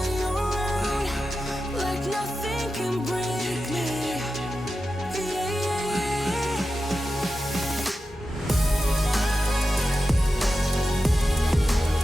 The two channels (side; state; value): both; normal; correlation 0.91